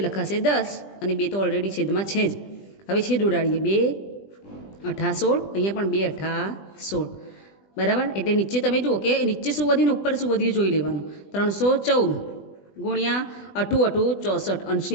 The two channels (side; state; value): right; late; 20 ms